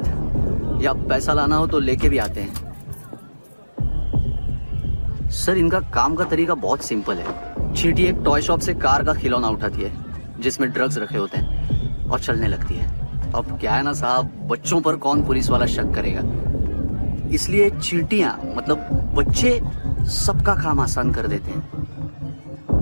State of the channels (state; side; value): inverted; both; correlation -1.00